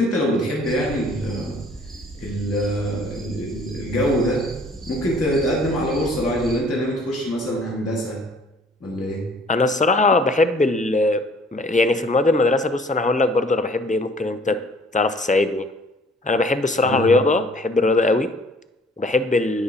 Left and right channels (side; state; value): both; normal; correlation 0.56